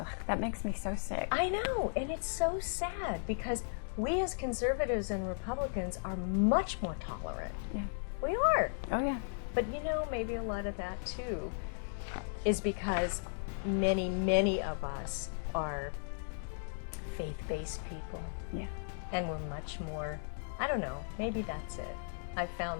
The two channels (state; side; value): silent; right; digital silence